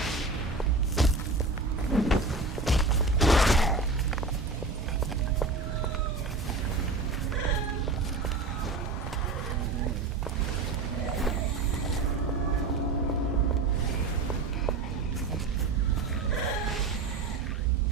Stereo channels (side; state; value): left; quieter; 3.7 dB